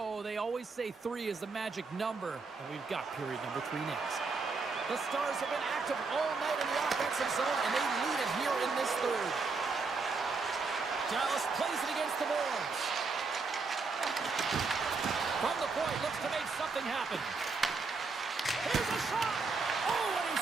They always say 3 is the magic number, and we've got period number 3 next. The Stars have been active all night in the offensive zone, and they lead it here in this third. Dallas plays it against the boards. From the point, looks to make something happen. Here's a shot! Oh, and he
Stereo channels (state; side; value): quieter; left; 4.3 dB